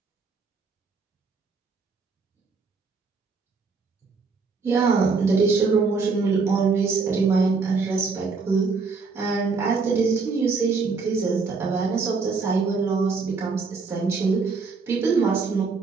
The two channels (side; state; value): left; quieter; 4.6 dB